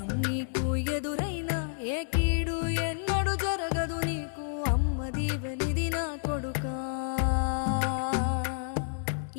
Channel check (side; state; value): right; silent; digital silence